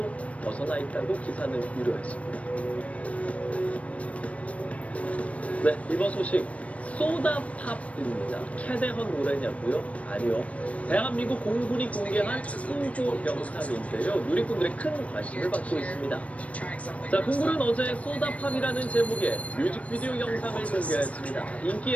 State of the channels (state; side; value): late; right; 0.065 ms